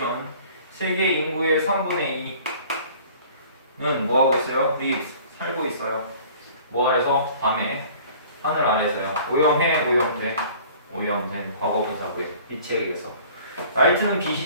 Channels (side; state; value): both; inverted; correlation -0.49